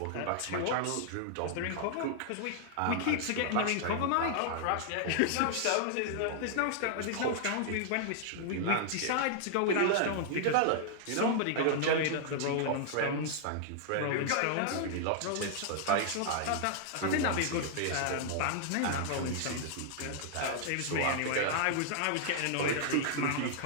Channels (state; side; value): different; both; correlation -0.01